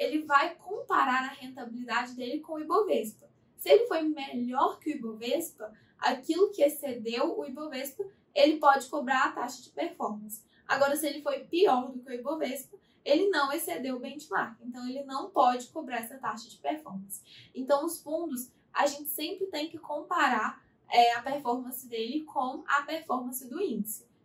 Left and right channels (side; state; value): both; identical; correlation 1.00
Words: vai comparar a rentabilidade dele com o Ibovespa. Se ele foi melhor que o Ibovespa, aquilo que excedeu o Ibovespa, ele pode cobrar a taxa de performance. Agora, se ele foi pior do que o Ibovespa, ele não excedeu o benchmark. Então, ele não pode cobrar essa taxa de performance. Então, os fundos, a gente sempre tem que comparar a performance dele com a performance do índice.